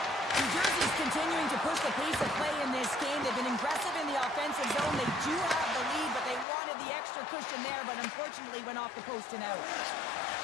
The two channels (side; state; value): right; drops out; at 6.5 s